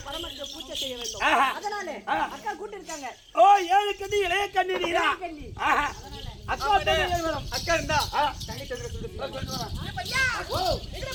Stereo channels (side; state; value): both; identical; correlation 1.00